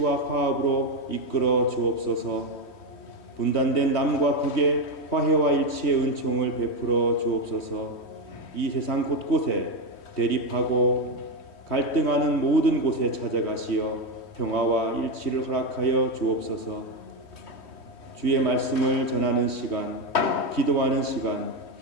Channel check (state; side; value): late; right; 3.1 ms